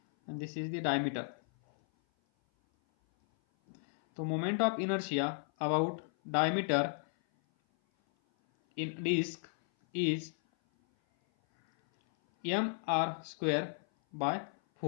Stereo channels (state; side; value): silent; right; 55 dB below the other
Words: and this is the diameter. तो moment of inertia about diameter in disk is